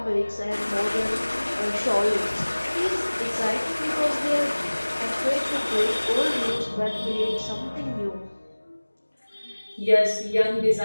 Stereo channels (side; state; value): both; inverted; correlation -1.00